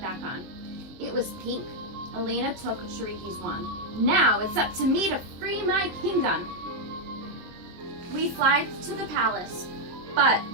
back on. It was pink. Elena took Shariki's wand. "Now it's up to me to free my kingdom." We fly to the palace, but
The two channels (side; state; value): left; late; 23 ms